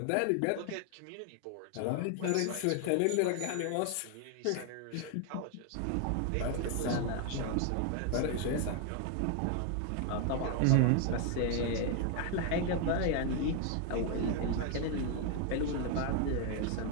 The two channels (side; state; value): both; different; correlation 0.01